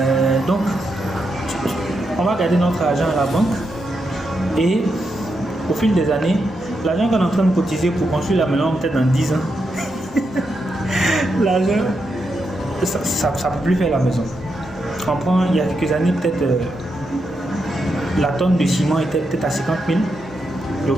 Donc on va garder notre argent à la banque, et au fil des années, l'argent qu'on est en train de cotiser pour construire la maison, peut-être dans 10 ans, l'argent, ça ne peut plus faire la maison. On prend, il y a quelques années, peut-être la tonne de ciment était peut-être à 50 000. J'ai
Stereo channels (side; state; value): both; normal; correlation 0.84